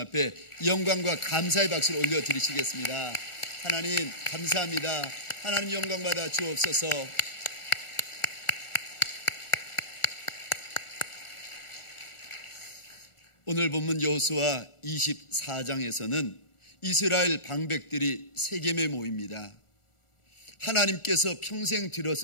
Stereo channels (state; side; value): late; right; 1.4 ms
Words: 영광과 감사의 박수를 올려드리시겠습니다. 하나님 감사합니다. 하나님 영광받아 주옵소서. 오늘 본문 여호수아 24장에서는 이스라엘 방백들이 세겜에 모입니다. 하나님께서 평생